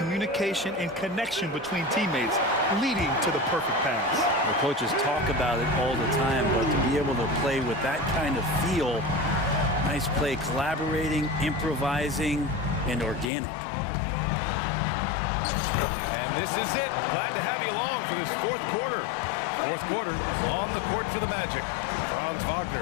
and connection between teammates leading to the perfect pass. The coaches talk about it all the time, but to be able to play with that kind of feel, nice play, collaborating, improvising, and organic. And this is it. Glad to have you along for this fourth quarter. Fourth quarter on the court for the Magic. Franz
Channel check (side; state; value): right; drops out; at 13.2 s